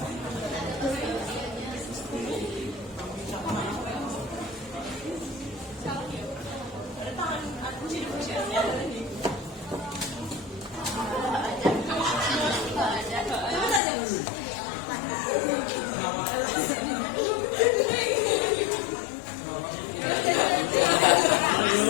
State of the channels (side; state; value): right; drops out; at 13.8 s